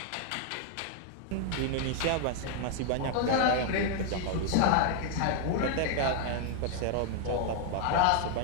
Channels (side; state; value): both; different; correlation 0.00